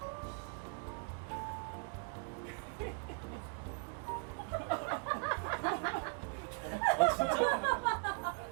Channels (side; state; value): left; quieter; 39.3 dB